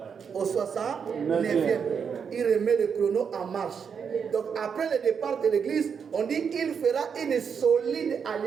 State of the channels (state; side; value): quieter; left; 6.7 dB